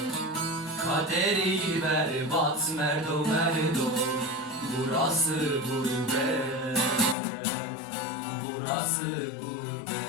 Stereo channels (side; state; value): right; drops out; at 7.2 s